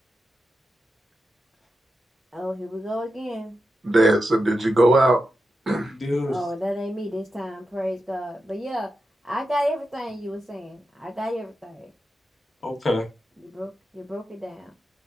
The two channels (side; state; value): both; normal; correlation 0.89